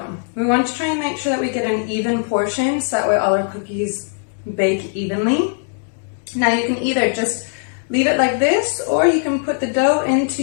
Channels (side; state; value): right; silent; 60 dB below the other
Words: We want to try and make sure that we get an even portion so that way all our cookies bake evenly. Now you can either just leave it like this, or you can put the dough into